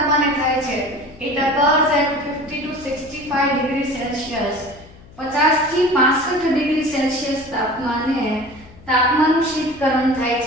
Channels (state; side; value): noise; left; hum, 22 dB below the sound